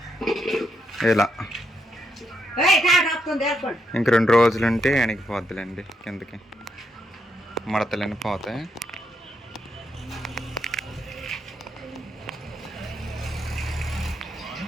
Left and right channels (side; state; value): both; normal; correlation 0.79